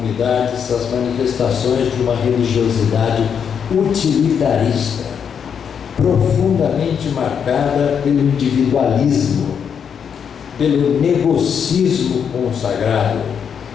as manifestações de uma religiosidade utilitarista, profundamente marcada pelo individualismo, pelo negocismo consagrado,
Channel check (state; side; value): quieter; right; 7.4 dB